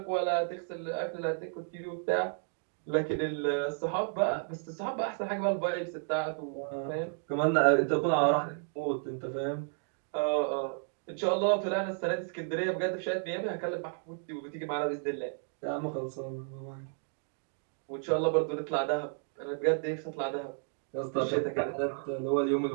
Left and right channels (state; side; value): silent; left; 56 dB below the other